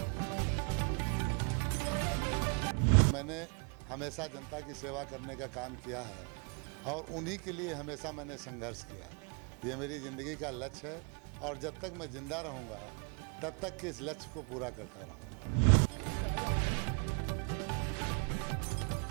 मैंने हमेशा जनता की सेवा करने का काम किया है और उन्हीं के लिए हमेशा मैंने संघर्ष किया है। ये मेरी ज़िंदगी का लक्ष्य है और जब तक मैं ज़िंदा रहूँगा तब तक के इस लक्ष्य को पूरा करता रहूँगा।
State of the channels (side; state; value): left; quieter; 38.6 dB